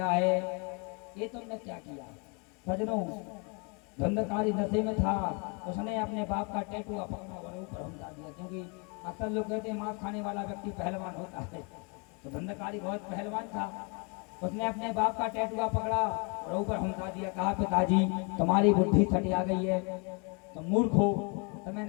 है, ये तुमने क्या किया? सजनों, धंधकारी नशे में था, उसने अपने बाप का टैटू पकड़ा और ऊपर हमला दिया, क्योंकि अक्सर लोग कहते हैं मांस खाने वाला व्यक्ति पहलवान होता है, तो धंधकारी बहुत पहलवान था। उसने अपने बाप का टैटू पकड़ा और ऊपर हमला दिया। कहा, पिताजी, तुम्हारी बुद्धि छटिया गई है, तुम मूर्ख हो, तुम्हें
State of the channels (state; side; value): quieter; right; 33.8 dB